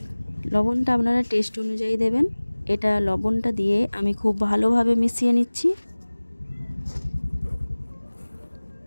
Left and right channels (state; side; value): inverted; both; correlation -1.00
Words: লবণটা আপনারা টেস্ট অনুযায়ী দেবেন। এটা লবণটা দিয়ে আমি খুব ভালোভাবে মিশিয়ে নিচ্ছি।